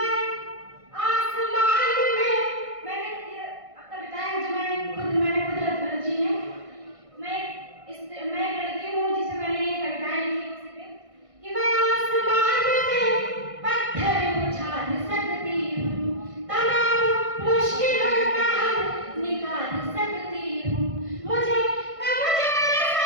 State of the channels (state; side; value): late; left; 1.6 ms